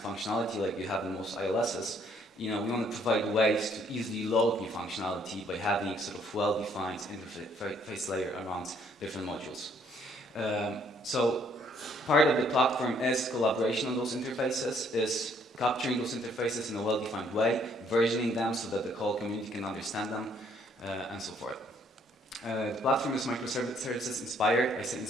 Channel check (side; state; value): both; normal; correlation 0.65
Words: functionality like you have in most ILSs. We want to provide ways to easily load new functionality by having sort of well-defined interface layer around different modules. So part of the platform is collaboration on those interfaces, is capturing those interfaces in a well-defined way, versioning them so that the whole community can understand them, and so forth. The platform is microservices inspired. I say